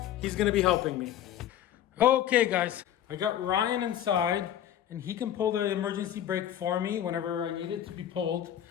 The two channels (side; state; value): right; quieter; 10.9 dB